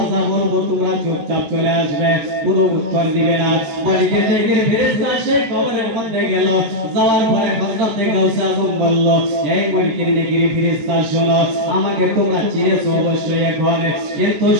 যা বলবো তোমরা চুপচাপ চলে আসবে, কোনো উত্তর দিবে না। মুনকির নেকির ফেরেশতা সেই কবরের মধ্যে গেল। যাওয়ার পরে হযরতে গাউসে আজম বলল, এই মুনকির নেকির ফেরেশতা শোনো, আমাকে তোমরা চিনেছো অবশ্যই এখন, কিন্তু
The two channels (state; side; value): late; left; 14 ms